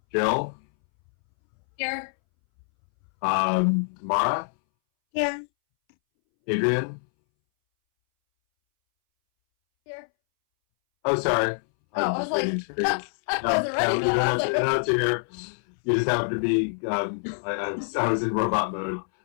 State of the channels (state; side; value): silent; right; 61 dB below the other